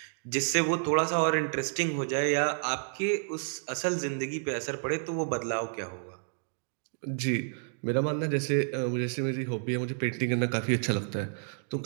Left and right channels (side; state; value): left; silent; digital silence